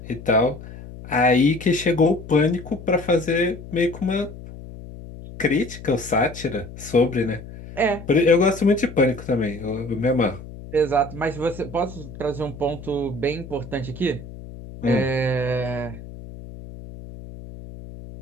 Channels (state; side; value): noise; left; hum, 14 dB below the sound